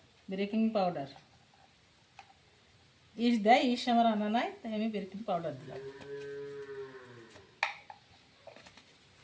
বেকিং পাউডার। ইস্ট দেয়, ইস্ট আমার আনা নাই, তাই আমি বেকিং পাউডার দিলাম।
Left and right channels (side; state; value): both; identical; correlation 1.00